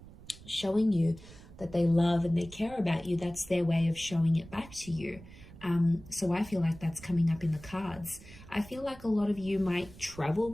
showing you that they love and they care about you. That's their way of showing it back to you. So I feel like that's coming up in the cards. I feel like a lot of you might travel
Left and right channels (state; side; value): noise; right; rumble, 19 dB below the sound